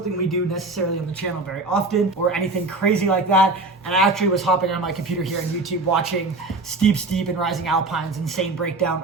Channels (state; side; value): quieter; left; 3.3 dB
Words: we do necessarily on the channel very often, or anything crazy like that. And I actually was hopping on my computer here on YouTube watching Steep and Rising Alpine's insane breakdown